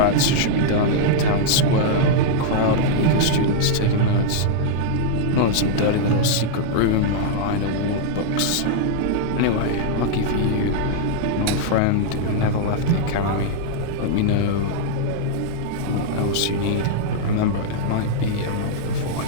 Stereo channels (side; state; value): both; different; correlation -0.01